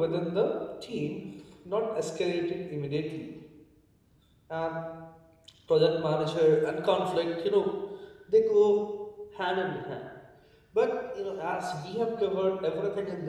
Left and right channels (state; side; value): identical; both; correlation 1.00